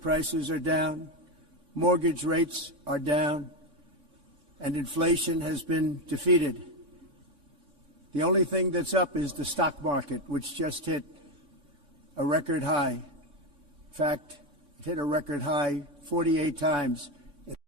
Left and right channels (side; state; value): left; late; 3.6 ms